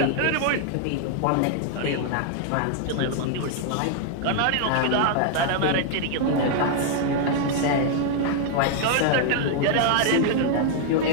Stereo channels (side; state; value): both; different; correlation 0.00